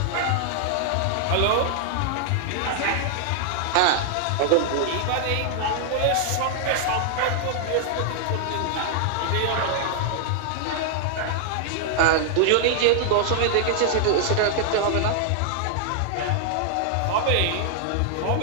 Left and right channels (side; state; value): both; different; correlation -0.01